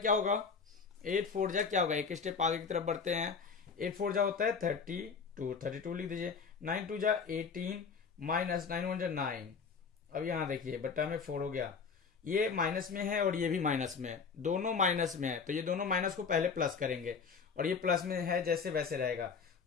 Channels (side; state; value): right; quieter; 5.6 dB